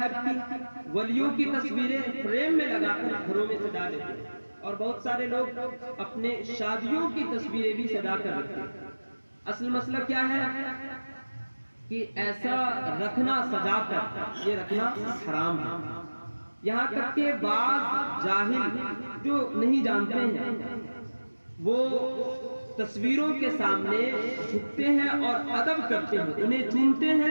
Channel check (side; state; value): both; inverted; correlation -1.00